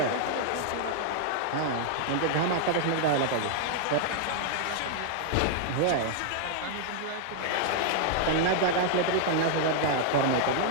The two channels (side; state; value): both; different; correlation -0.01